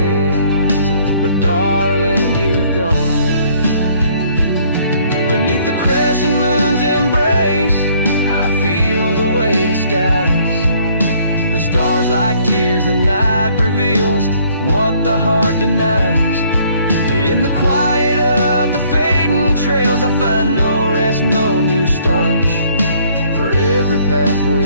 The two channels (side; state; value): both; inverted; correlation -0.62